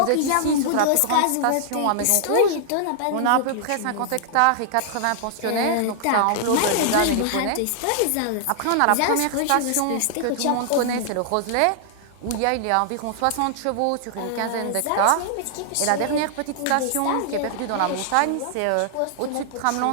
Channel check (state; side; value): different; both; correlation -0.01